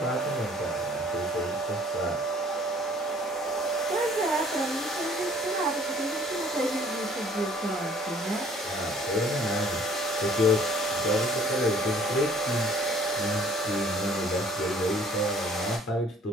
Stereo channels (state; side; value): normal; both; correlation 0.56